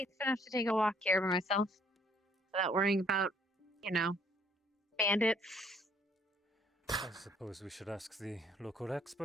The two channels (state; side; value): normal; both; correlation 0.62